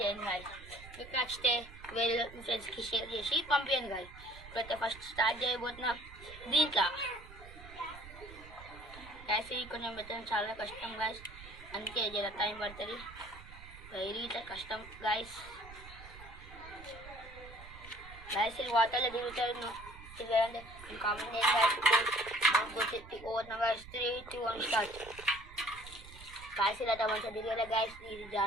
చేయండి గాయస్. మీకు నచ్చితే వేరే ఫ్రెండ్స్కి షేర్ చేసి పంపించండి గాయస్. ఇప్పుడైతే ఫస్ట్ స్టార్ట్ చేయబోతున్నాం దీంట్లో గ్యాస్. ఇది కొంచెం పెట్టడం చాలా కష్టం గాయస్, అందుకే జర టైం పడుతుంది. ఇరిగితే కష్టం గాయస్. గాయస్ ఇది వాటర్లో దిగుతాను తిరగండి, కామెంట్ చేయండి గాయస్. 3, 2, 1 start guys. ఇలా మంచిగా తిరగలే గాయస్, ఇది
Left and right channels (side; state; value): right; noise; rumble, 17 dB below the sound